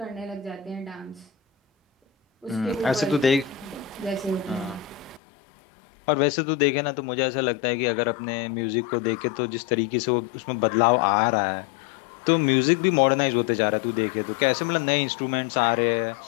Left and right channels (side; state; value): right; drops out; at 5.2 s